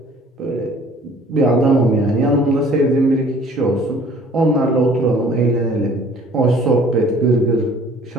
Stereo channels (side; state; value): both; normal; correlation 0.53